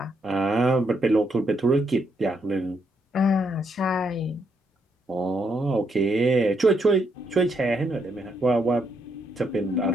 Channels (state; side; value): normal; both; correlation 0.76